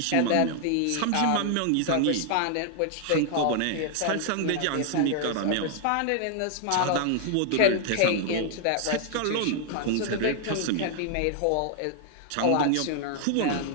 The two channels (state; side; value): different; both; correlation 0.00